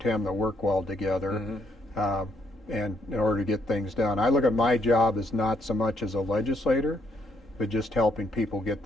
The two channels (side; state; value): both; normal; correlation 0.72